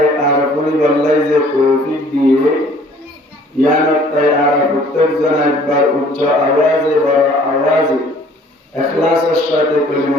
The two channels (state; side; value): normal; both; correlation 0.55